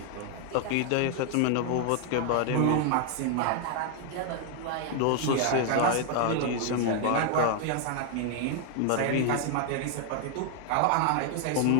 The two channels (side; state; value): both; different; correlation 0.00